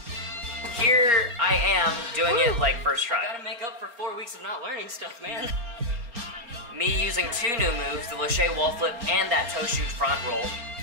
am doing it like first try. Gotta make up for 4 weeks of not learning stuff, man. Me using 2 new moves, the lache wall flip and that toe shoot front roll.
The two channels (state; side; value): late; left; 4.2 ms